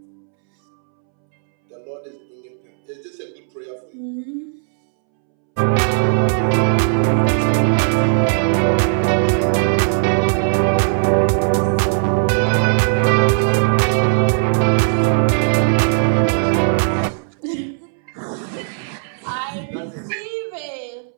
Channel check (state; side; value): silent; left; 67 dB below the other